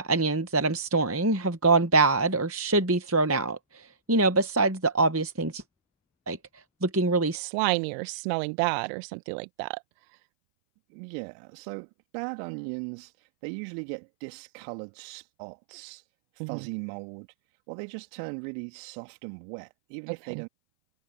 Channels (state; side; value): drops out; left; at 7.4 s